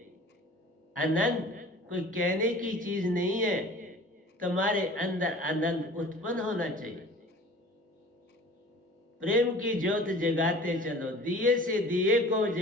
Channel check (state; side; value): normal; both; correlation 0.44